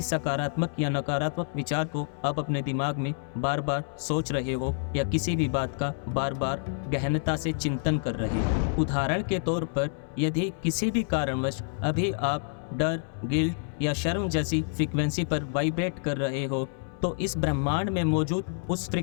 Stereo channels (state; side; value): silent; right; digital silence